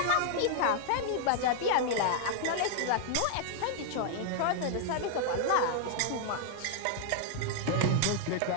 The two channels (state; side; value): different; both; correlation 0.00